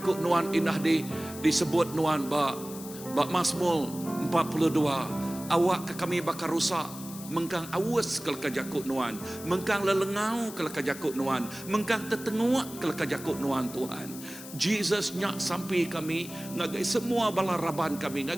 nuan indah disebut nuan bak Mazmur 42, awak ke kami bakar rusak, mengkang awas ke leka jakut nuan, mengkang lelengau ke leka jakut nuan, mengkang tertenguak ke leka jakut nuan Tuhan. Jesus nyak sampai kami, ngagai semua balaraban kami,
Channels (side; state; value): left; noise; hiss, 14 dB below the sound